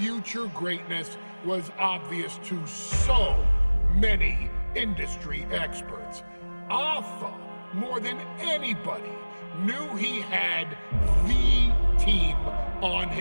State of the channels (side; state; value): both; inverted; correlation -1.00